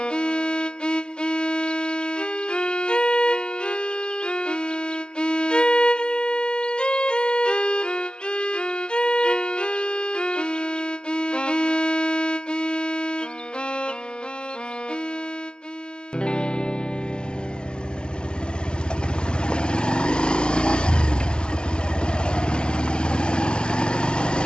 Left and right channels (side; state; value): right; late; 0.048 ms